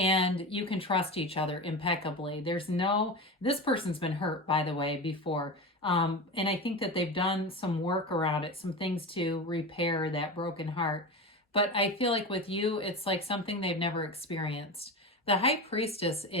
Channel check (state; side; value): normal; both; correlation 0.25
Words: you can trust each other impeccably. This person's been hurt, by the way, before. And I think that they've done some work around it, some things to repair that broken heart. But I feel like with you, it's like something they've never experienced. The High Priestess